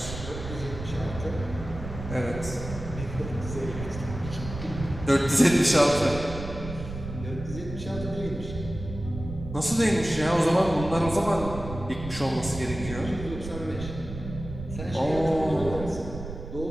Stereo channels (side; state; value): right; noise; rumble, 9 dB below the sound